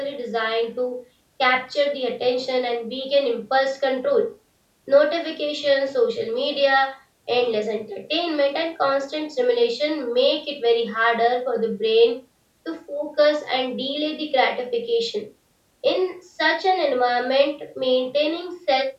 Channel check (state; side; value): identical; both; correlation 1.00